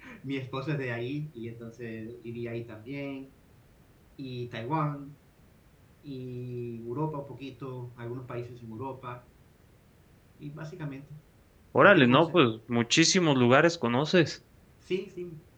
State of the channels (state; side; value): identical; both; correlation 1.00